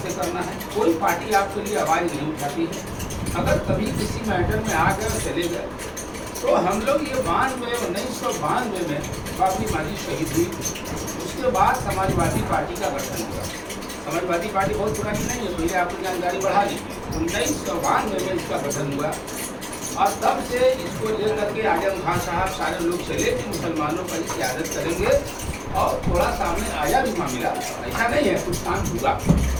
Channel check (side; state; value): both; identical; correlation 1.00